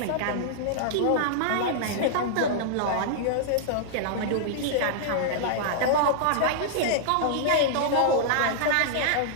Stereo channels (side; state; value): both; different; correlation -0.02